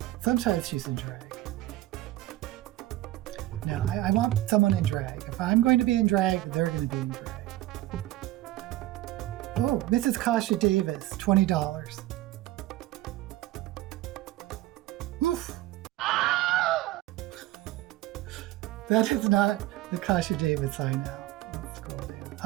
Sometimes she's in drag. No, I want someone in drag. If I'm going to be in drag, they're going to be in drag. Oh, Mrs. Kasha Davis, $20. Oof. That is not the Kasha Davis I know. Let's scroll down.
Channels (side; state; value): left; quieter; 15.8 dB